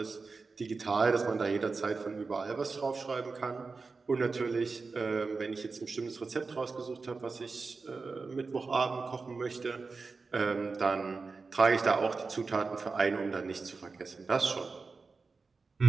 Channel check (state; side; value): quieter; left; 4.3 dB